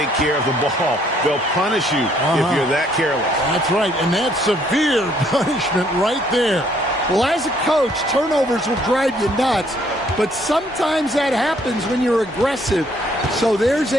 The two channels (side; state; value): both; normal; correlation 0.65